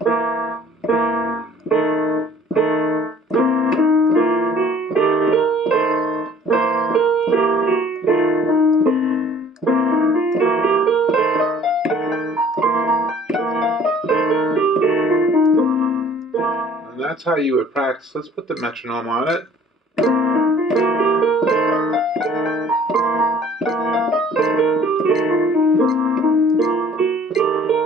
And that's how you would practice. Let's put the metronome on it.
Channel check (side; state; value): both; normal; correlation 0.53